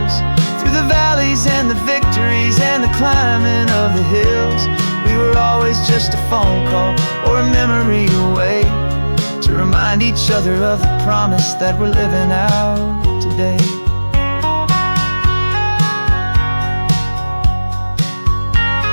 through the valleys and the victories and the climbing of the hills, we were always just a phone call or a memory away, to remind each other of the promise that we're living out today.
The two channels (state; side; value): inverted; both; correlation -1.00